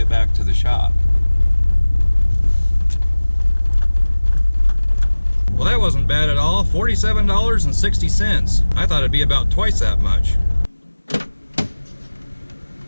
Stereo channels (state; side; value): inverted; both; correlation -1.00